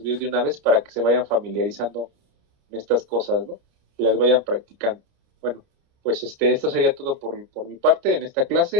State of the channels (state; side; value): late; left; 29 ms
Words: de una vez para que se vayan familiarizando en estas cosas, ¿no? Y las vayan practicando. Bueno, pues esto sería todo por mi parte en esta